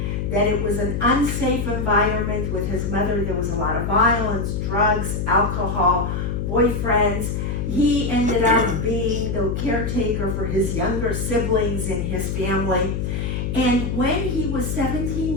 that it was an unsafe environment with his mother. There was a lot of violence, drugs, alcohol, boyfriends. He ended up being the caretaker for his younger siblings in his family. And when he was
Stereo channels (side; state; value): left; noise; hum, 2 dB below the sound